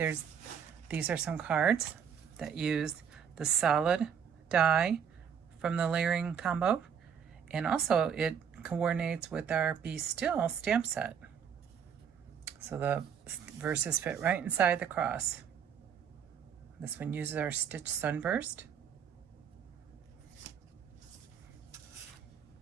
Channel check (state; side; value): quieter; left; 7.6 dB